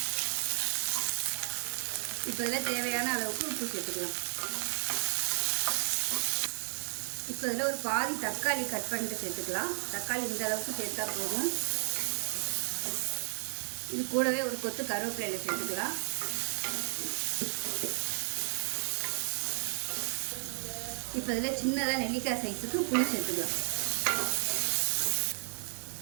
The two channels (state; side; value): silent; left; digital silence